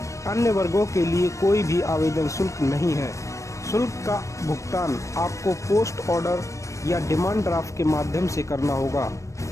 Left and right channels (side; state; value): right; late; 0.15 ms